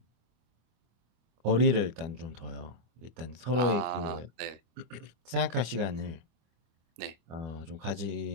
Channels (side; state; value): left; late; 25 ms